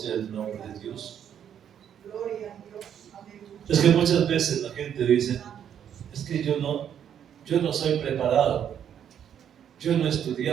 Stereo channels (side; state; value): left; quieter; 9.1 dB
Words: el nombre de Dios. Es que muchas veces la gente dice: es que yo no soy preparado, yo no he